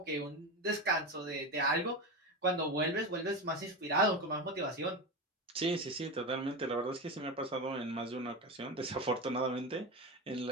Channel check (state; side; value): normal; both; correlation 0.20